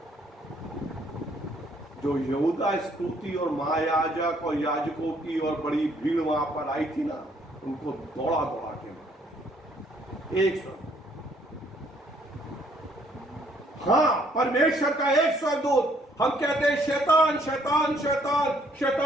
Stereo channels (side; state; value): both; normal; correlation 0.65